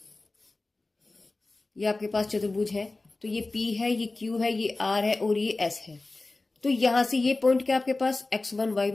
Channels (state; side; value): quieter; right; 3.2 dB